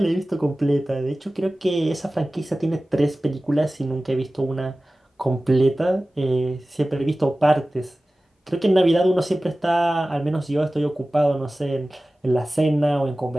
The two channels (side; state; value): both; normal; correlation 0.97